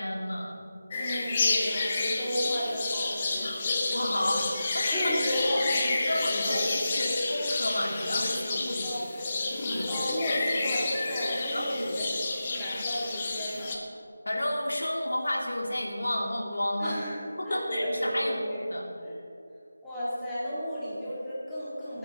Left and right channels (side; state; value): both; inverted; correlation -0.92